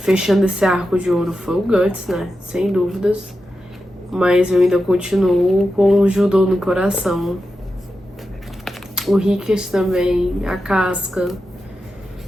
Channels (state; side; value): normal; both; correlation 0.90